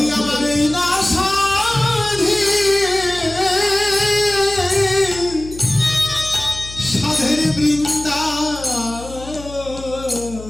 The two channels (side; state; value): left; noise; hum, 15 dB below the sound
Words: আমার এই না সাধে সাধের বৃন্দা